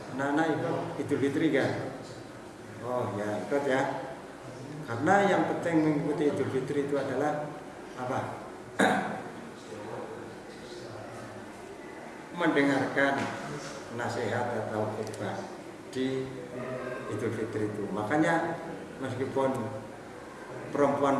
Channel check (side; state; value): both; identical; correlation 1.00